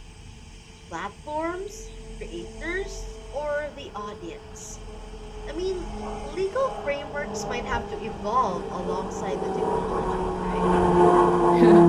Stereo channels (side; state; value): both; identical; correlation 1.00